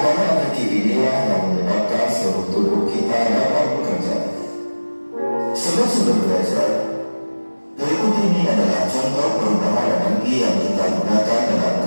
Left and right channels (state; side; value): inverted; both; correlation -1.00